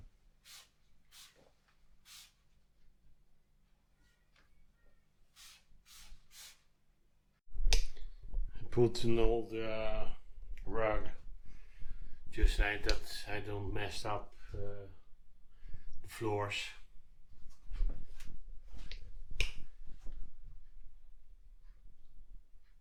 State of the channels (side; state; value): both; identical; correlation 1.00